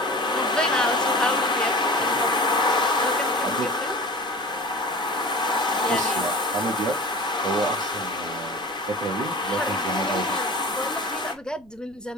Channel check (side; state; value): right; noise; rumble, 28 dB below the sound